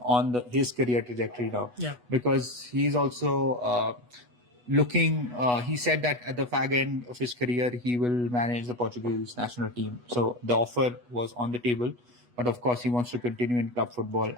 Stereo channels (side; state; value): left; late; 8.2 ms